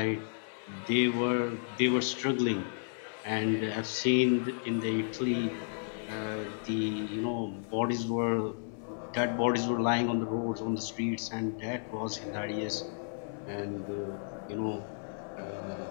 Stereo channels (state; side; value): silent; right; 56 dB below the other